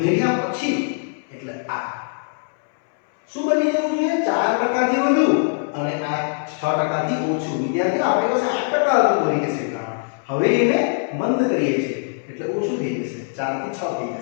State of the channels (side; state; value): right; silent; 63 dB below the other